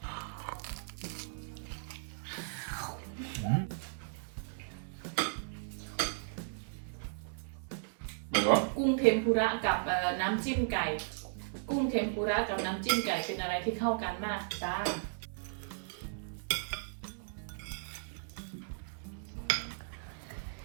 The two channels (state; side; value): silent; left; 54 dB below the other